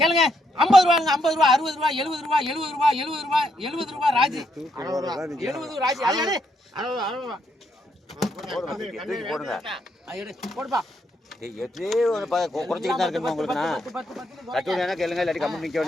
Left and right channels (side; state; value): both; normal; correlation 0.77